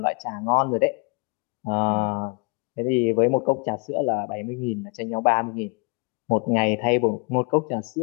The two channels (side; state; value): right; quieter; 32.7 dB